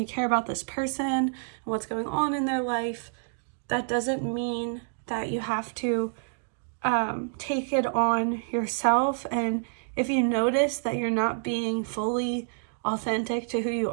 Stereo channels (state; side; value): silent; left; digital silence